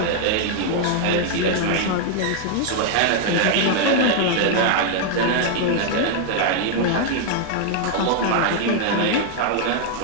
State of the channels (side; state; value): both; different; correlation 0.00